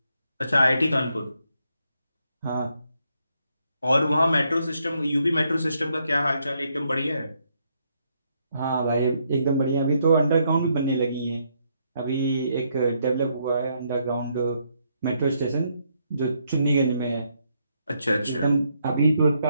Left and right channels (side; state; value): both; inverted; correlation -0.75